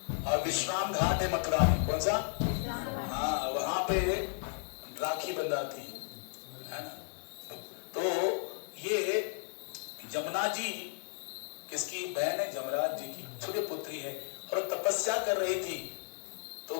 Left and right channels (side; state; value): right; silent; digital silence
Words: और विश्राम घाट है मथुरा में। कौन सा? हाँ, वहां पे राखी बंधाती है ना। तो ये यमुना जी किसकी बहन है? यमराज जी की छोटी पुत्री है। और तपस्या कर रही थी, तो